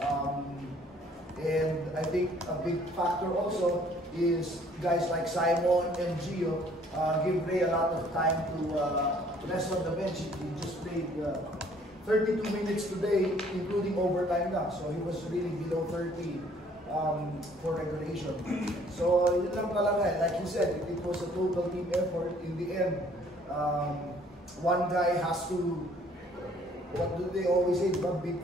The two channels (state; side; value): normal; both; correlation 0.59